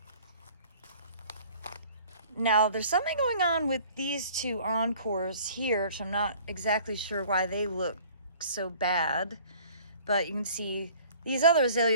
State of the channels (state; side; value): inverted; both; correlation -0.50